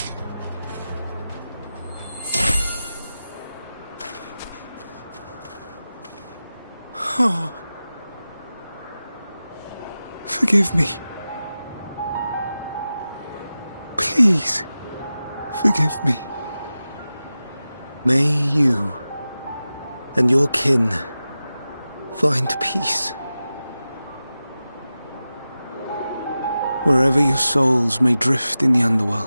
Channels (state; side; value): inverted; both; correlation -0.94